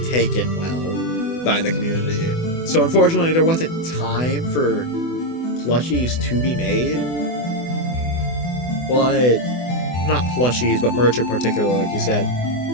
taken well by the community. So unfortunately, there wasn't time for plushies to be made. But not plushies, but merch in particular, like you said.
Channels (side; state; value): right; late; 24 ms